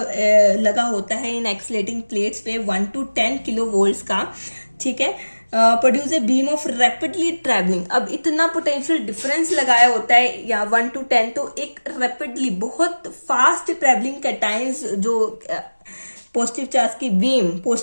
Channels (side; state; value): both; inverted; correlation -1.00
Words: लगा होता है इन एक्सेलेटिंग प्लेट्स पे 1 to 10 किलो वोल्ट्स का। ठीक है, produce a beam of rapidly travelling. अब इतना पोटेंशियल डिफरेंस लगाया होता है या 1 to 10, तो एक रैपिडली बहुत फास्ट ट्रैवलिंग कैटायंस जो पॉजिटिव चार्ज की बीम,